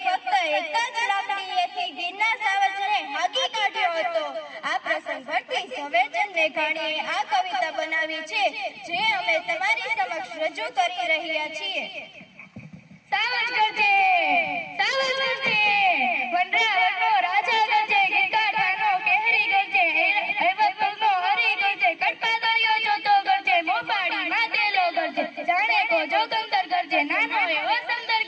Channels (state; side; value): identical; both; correlation 1.00